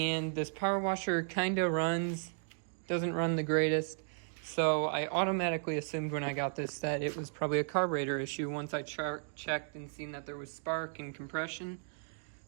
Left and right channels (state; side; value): silent; left; 54 dB below the other